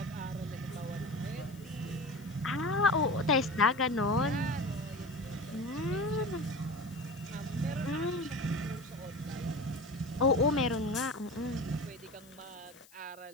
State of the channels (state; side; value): noise; left; hiss, 25 dB below the sound